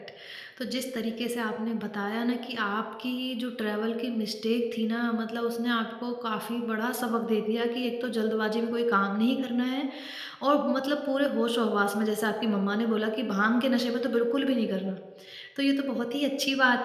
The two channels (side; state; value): both; identical; correlation 1.00